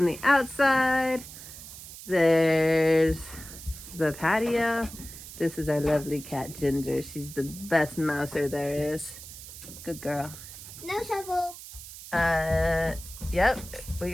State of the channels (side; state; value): right; noise; hiss, 14 dB below the sound